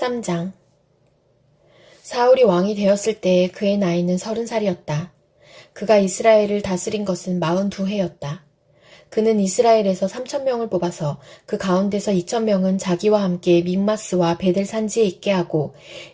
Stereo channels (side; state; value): both; identical; correlation 1.00